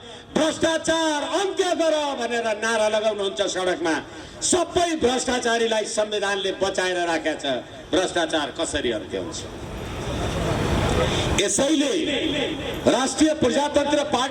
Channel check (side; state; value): both; identical; correlation 1.00